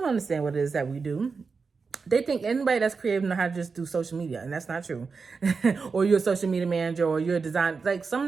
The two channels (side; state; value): left; quieter; 4.9 dB